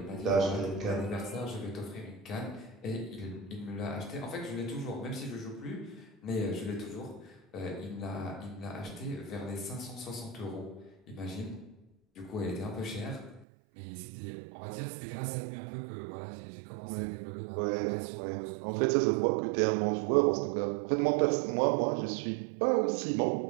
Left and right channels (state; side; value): drops out; left; at 13.5 s